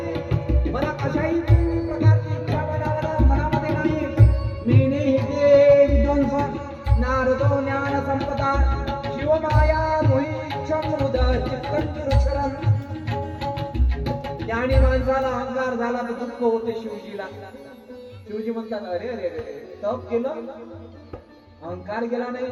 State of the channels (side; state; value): both; identical; correlation 1.00